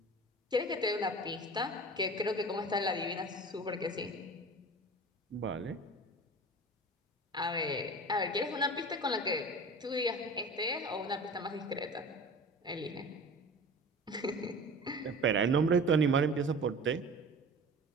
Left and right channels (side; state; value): both; normal; correlation 0.38